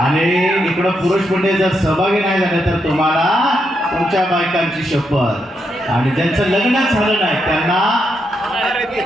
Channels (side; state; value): both; normal; correlation 0.81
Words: आणि इकडं पुरुष म्हणजे जर सहभागी नाही झाले तर तुम्हाला तुमच्या बायकांची शपथ. आणि ज्यांचं लग्नच झालं नाही त्यांना